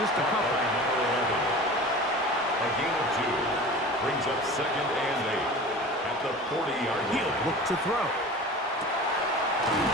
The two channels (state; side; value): normal; both; correlation 0.37